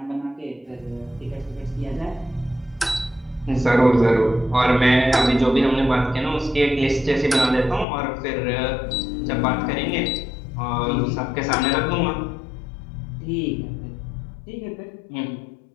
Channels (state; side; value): drops out; right; at 7.9 s